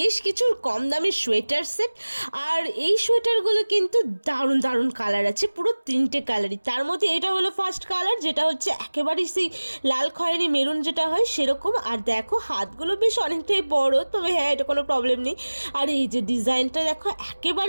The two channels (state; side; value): inverted; both; correlation -1.00